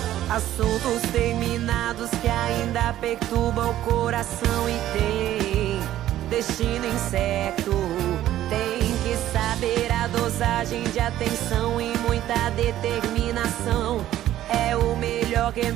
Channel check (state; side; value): quieter; left; 13.1 dB